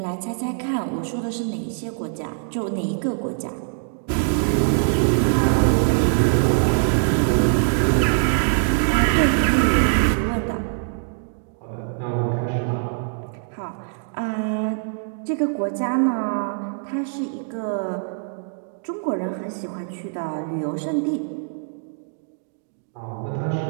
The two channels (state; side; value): silent; left; digital silence